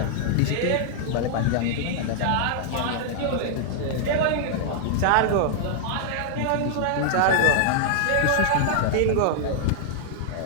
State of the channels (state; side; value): different; both; correlation -0.01